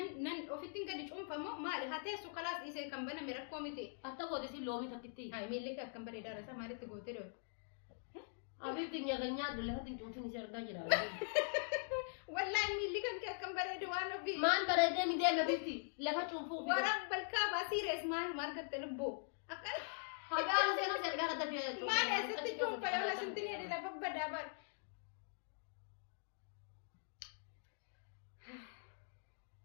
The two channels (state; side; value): silent; right; digital silence